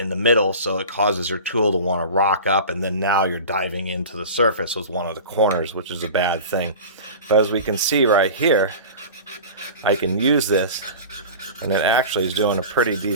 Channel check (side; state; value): both; inverted; correlation -0.35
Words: the middle, so it causes your tool to want to rock up, and then now you're diving into the surface with one of the corners, which is a bad thing. But as we can see right here, I can use this, and it actually is doing a pretty